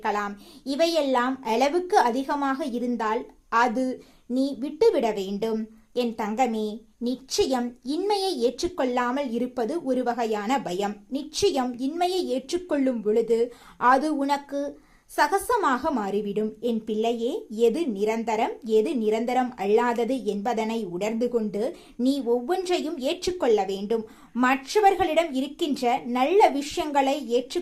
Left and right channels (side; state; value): both; identical; correlation 1.00